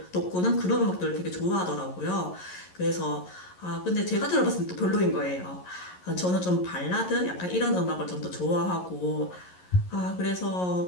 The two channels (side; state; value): right; late; 11 ms